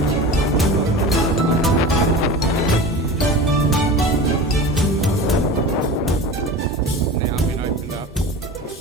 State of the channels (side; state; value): both; normal; correlation 0.33